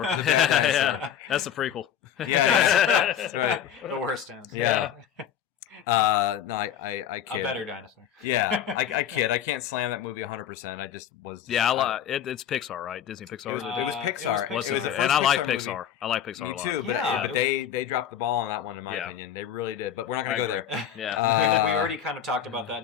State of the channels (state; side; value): quieter; right; 9.4 dB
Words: Yeah. That's the prequel. Yeah, that's right. The worst ones. Yeah. No, I kid. A better dinosaur. Yeah, I kid. I can't slam that movie 100%. I just was. Yeah, it's Pixar, right? Disney Pixar. It was Pixar. It was and I like Pixar. Movie. I like Pixar a lot. Me too. But they dropped the ball on that one, in my opinion. They really did. But we're not going to go there. Yeah, we already kind of talked about that in